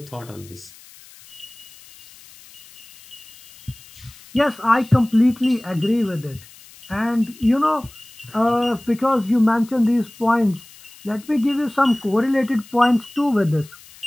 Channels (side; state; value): left; noise; hiss, 22 dB below the sound